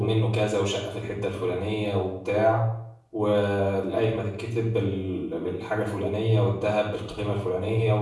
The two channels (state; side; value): identical; both; correlation 1.00